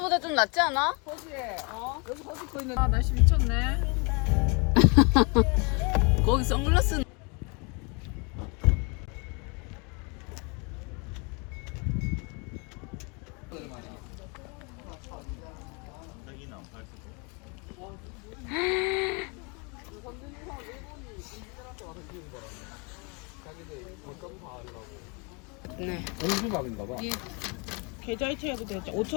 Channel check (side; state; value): right; quieter; 31.6 dB